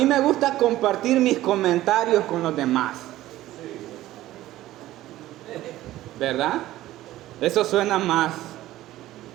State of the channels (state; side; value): quieter; left; 15.3 dB